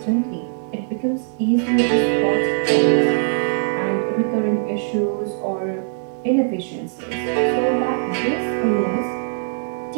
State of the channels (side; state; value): left; silent; digital silence